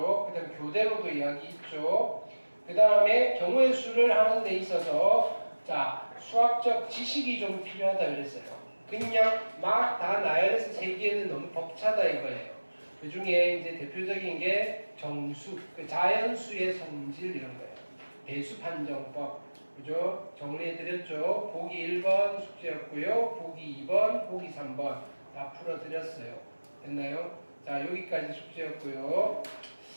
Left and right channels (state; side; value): inverted; both; correlation -1.00